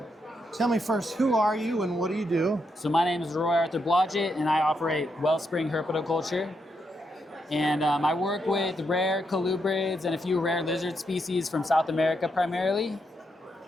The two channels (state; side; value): normal; both; correlation 0.81